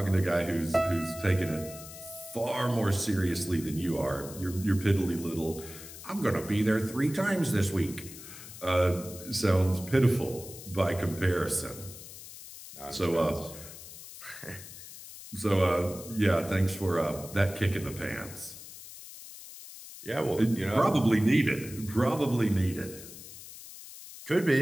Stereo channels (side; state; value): left; noise; hiss, 14 dB below the sound